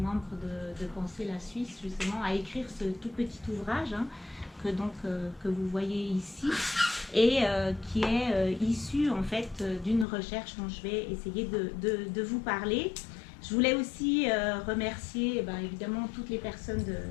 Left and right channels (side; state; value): right; drops out; at 10.1 s